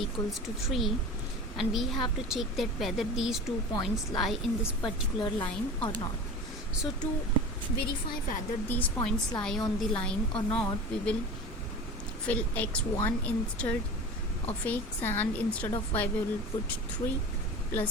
to 3, and we have to check that whether these 2 points lie in this particular line or not. So to verify whether these points lie on the line or not, we will fill x1 instead of x, and instead of y we will put 3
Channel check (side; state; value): both; normal; correlation 0.34